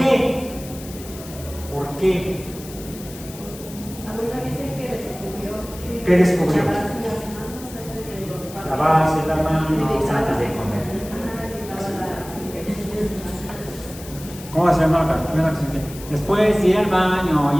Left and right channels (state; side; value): noise; left; hiss, 16 dB below the sound